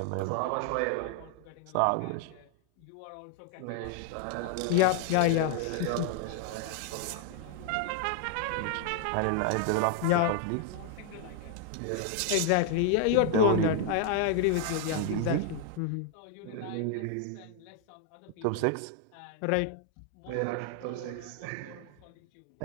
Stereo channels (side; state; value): both; different; correlation 0.00